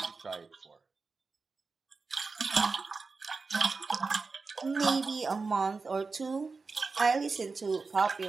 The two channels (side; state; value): left; quieter; 4.3 dB